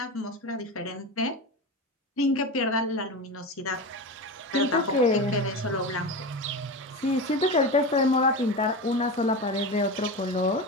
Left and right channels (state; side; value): normal; both; correlation 0.24